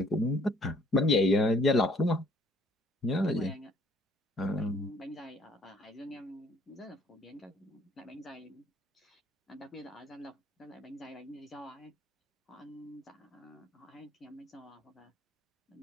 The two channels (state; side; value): normal; both; correlation 0.61